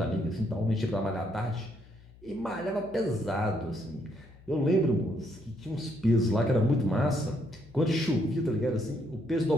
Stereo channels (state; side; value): noise; left; hum, 23 dB below the sound